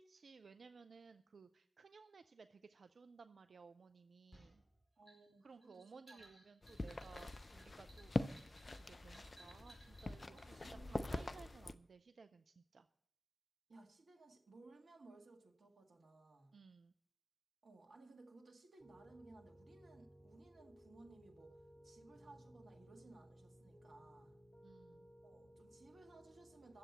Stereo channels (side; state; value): both; normal; correlation 0.96